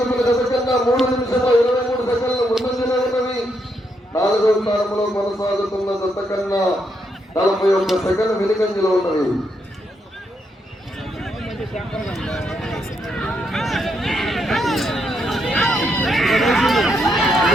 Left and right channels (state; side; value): normal; both; correlation 0.79